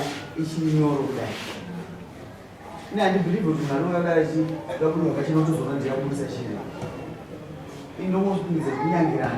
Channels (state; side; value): identical; both; correlation 1.00